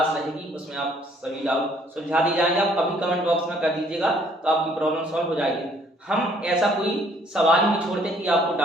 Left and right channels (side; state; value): both; normal; correlation 0.62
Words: रहेगी, उसमें आप सभी डाउट सुलझा दिए जाएंगे। आप अभी कमेंट बॉक्स में कर दीजिएगा, तो आपकी प्रॉब्लम सॉल्व हो जाएगी। हम ऐसा कोई सवाल नहीं छोड़ते कि आपको